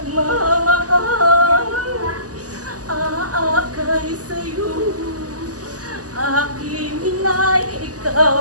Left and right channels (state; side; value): late; left; 0.67 ms